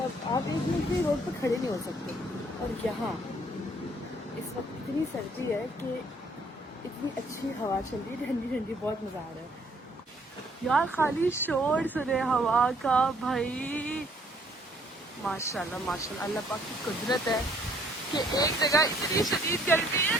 आप एक मिनट भी रोड पर खड़े नहीं हो सकते। और यहाँ इस वक्त इतनी सर्दी है कि इतनी अच्छी हवा चल रही है, ठंडी ठंडी, बहुत मज़ा आ रहा है यार। खाली शोर सुने हवा का भाई। माशाल्लाह माशाल्लाह, अल्लाह पाक की कुदरत है कि एक जगह इतनी शदीद गर्मी है।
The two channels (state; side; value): normal; both; correlation 0.63